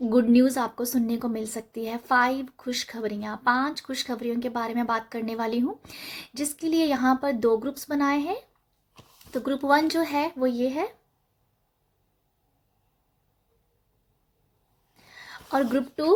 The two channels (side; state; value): both; identical; correlation 1.00